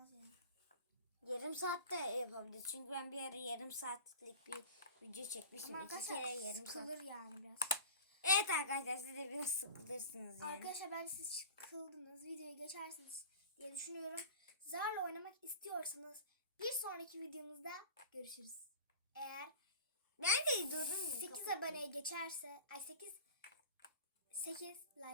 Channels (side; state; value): both; inverted; correlation -0.35